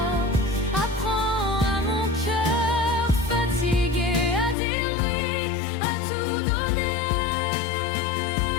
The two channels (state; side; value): drops out; right; at 4.5 s